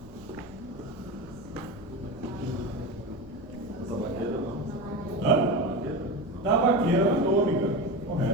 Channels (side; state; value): right; noise; rumble, 22 dB below the sound